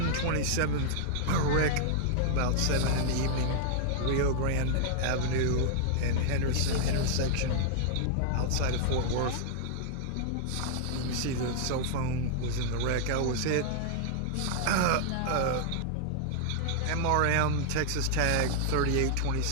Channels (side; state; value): both; different; correlation -0.01